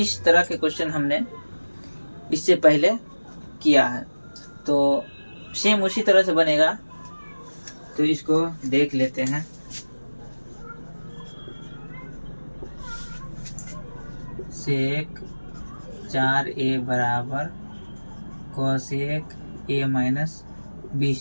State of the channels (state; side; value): inverted; both; correlation -1.00